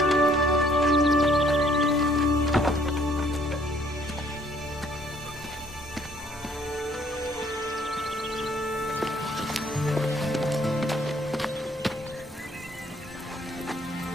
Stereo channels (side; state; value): both; normal; correlation 0.62